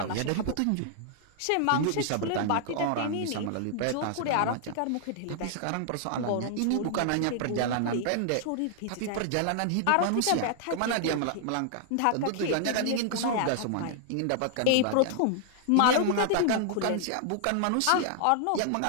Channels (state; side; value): different; both; correlation -0.01